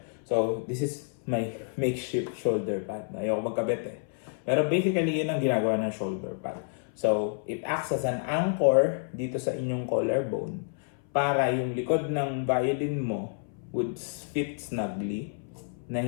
So this is my makeshift shoulder pad. Ayoko magkabit eh. Pero basically, yun ang ginagawa ng shoulder pad. So, it acts as an anchor dito sa inyong collarbone para yung likod ng violin mo would fit snugly na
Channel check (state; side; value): silent; right; 57 dB below the other